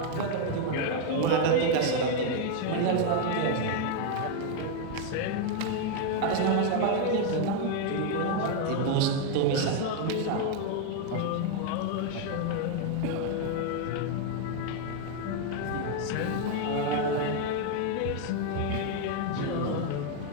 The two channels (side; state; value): both; different; correlation 0.01